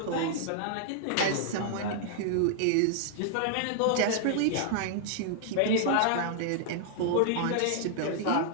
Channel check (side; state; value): both; different; correlation -0.01